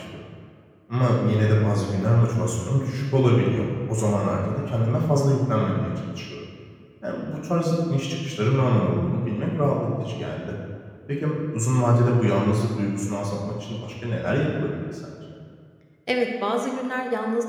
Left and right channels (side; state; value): both; identical; correlation 1.00